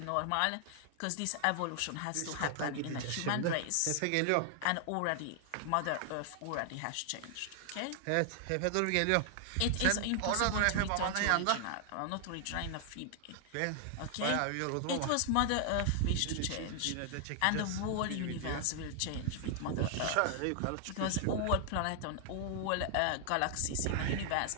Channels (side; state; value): both; different; correlation 0.00